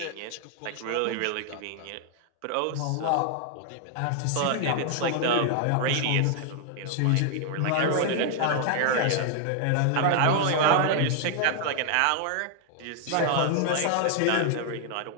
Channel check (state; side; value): different; both; correlation 0.00